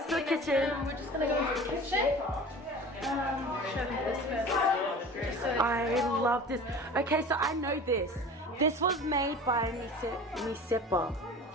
the kitchen. We're just gonna go into the kitchen. Show them this first. I love this. Okay, so I know this. This was made by Sipa.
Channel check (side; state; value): both; normal; correlation 0.38